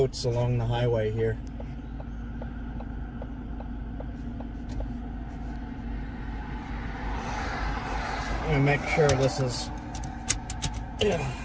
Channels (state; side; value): identical; both; correlation 1.00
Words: along the highway here. I'm gonna make sure this is...